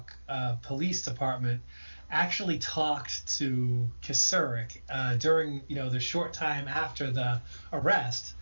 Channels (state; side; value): inverted; both; correlation -1.00